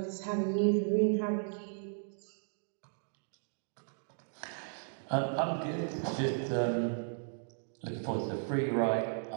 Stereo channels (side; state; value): left; silent; digital silence